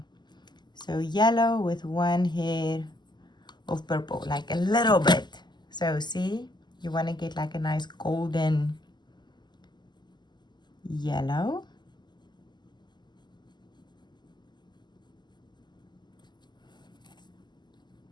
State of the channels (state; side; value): late; right; 0.21 ms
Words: So yellow with one hair of purple, like a little bit. So see, you want to get like a nice golden yellow.